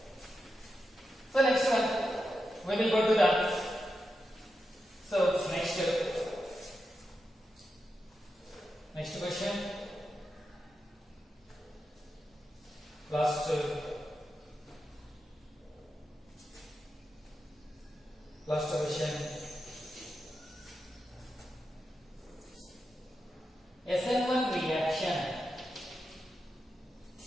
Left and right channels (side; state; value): both; normal; correlation 0.88